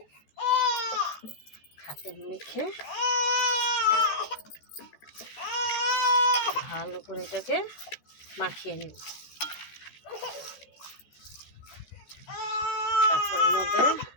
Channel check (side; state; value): right; late; 14 ms